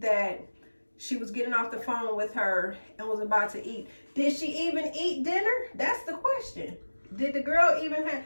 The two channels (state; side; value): inverted; both; correlation -1.00